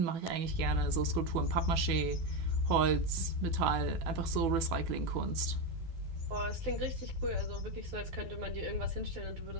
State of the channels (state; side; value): late; left; 12 ms